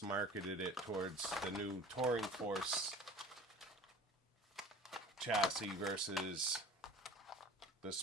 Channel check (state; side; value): normal; both; correlation 0.42